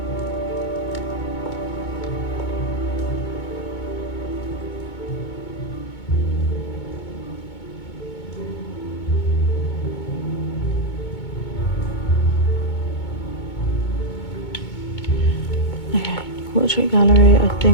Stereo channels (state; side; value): late; right; 2.2 ms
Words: Portrait gallery, I